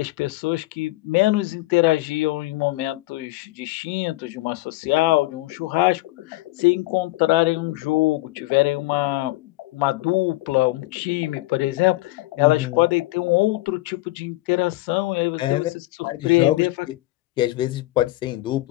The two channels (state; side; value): quieter; right; 19.3 dB